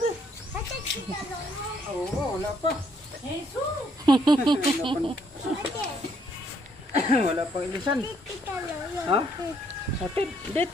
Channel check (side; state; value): both; normal; correlation 0.69